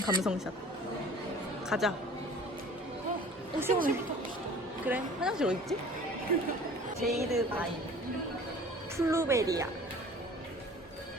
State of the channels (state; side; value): normal; both; correlation 0.46